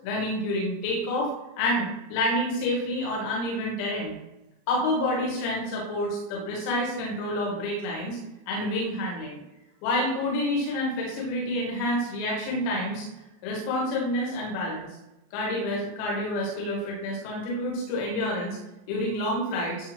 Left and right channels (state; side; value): late; right; 34 ms